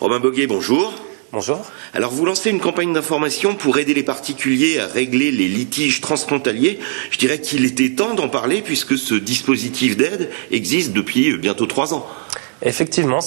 Romain Boguet, bonjour. Bonjour. Alors vous lancez une campagne d'information pour aider les particuliers à régler les litiges transfrontaliers. Je dirais qu'il était temps d'en parler puisque ce dispositif d'aide existe depuis bientôt 3 ans. Effectivement,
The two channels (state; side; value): silent; left; digital silence